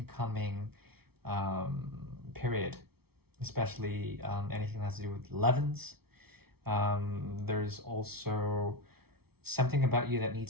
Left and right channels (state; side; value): late; left; 0.95 ms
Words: um, period, especially anything that has to do with 11s. There's also something about you that